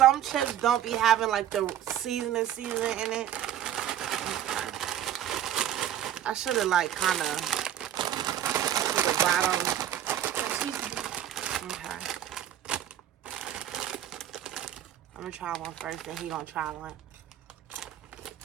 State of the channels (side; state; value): left; quieter; 11.1 dB